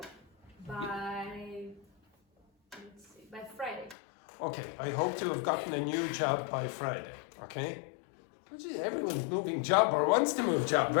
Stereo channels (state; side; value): drops out; right; at 4.0 s